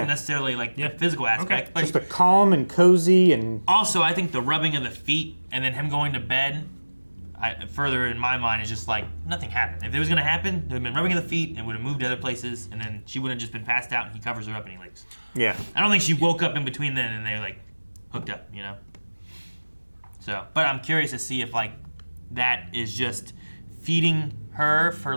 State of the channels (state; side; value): inverted; both; correlation -1.00